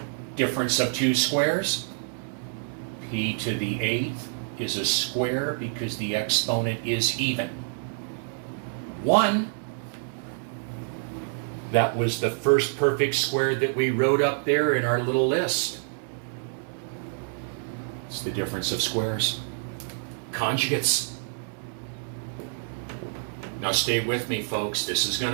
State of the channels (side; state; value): left; silent; 60 dB below the other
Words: Difference of 2 squares. P to the 8th is a square because the exponent is even. 1. That was the first perfect square that we wrote up there in our little list. It's the difference of squares. Conjugates. Now stay with me, folks. This is going